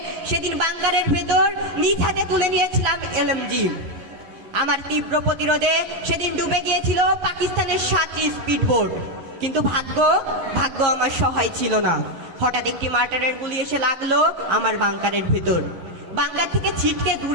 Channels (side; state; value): left; late; 11 ms